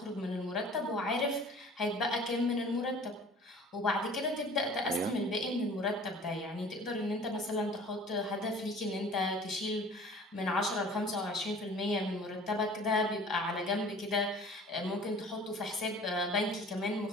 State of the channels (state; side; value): normal; both; correlation 0.47